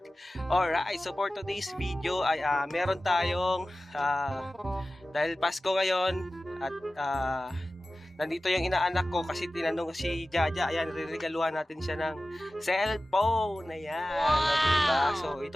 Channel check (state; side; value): normal; both; correlation 0.96